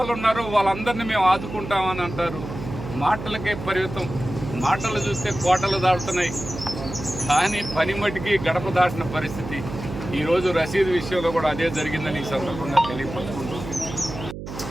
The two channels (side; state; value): right; noise; hum, 9 dB below the sound